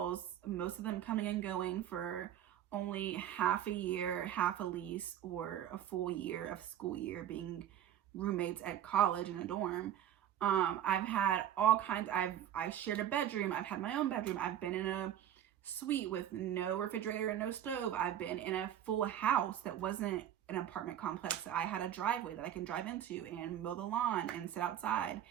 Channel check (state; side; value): quieter; left; 10.7 dB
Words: most of them coming and going for only half a year, half a lease, or a full year of school year being roommates at college in a dorm. I've had all kinds. I've shared a bedroom. I've had my own bedroom. I've been in a suite with no refrigerator and no stove. I've been in a full house that wasn't an apartment complex. I had a driveway that I can drive into and mow the lawn and sit outside